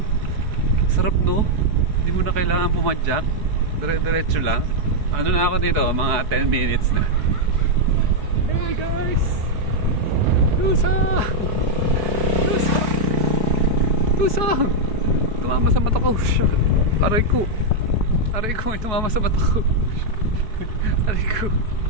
Sarap, no? Hindi mo na kailangan pumadyak. Dire-diretso lang. Ano na ako dito? Mga 10 minutes na. Hey guys! Lusong! Lusong! Lusong! Tumama sa mata ko. Aray ko. Aray ko, may tumama sa mata ko. Aray ko.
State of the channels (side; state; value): left; late; 4.6 ms